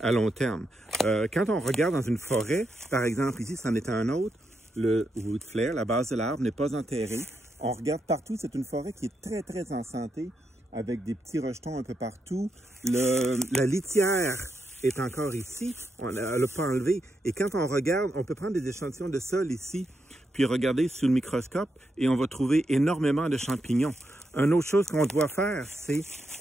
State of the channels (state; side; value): normal; both; correlation 0.83